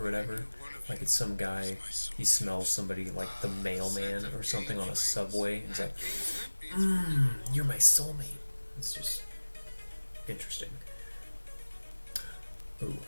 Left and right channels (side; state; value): both; inverted; correlation -1.00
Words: whatever. Like it's some guy, he smells somebody like the mailman or something on a subway, and he's like, you're my soulmate. It's just interesting. Ooh,